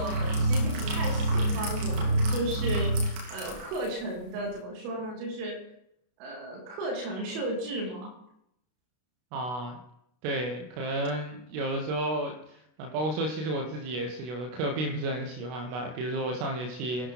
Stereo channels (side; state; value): left; late; 32 ms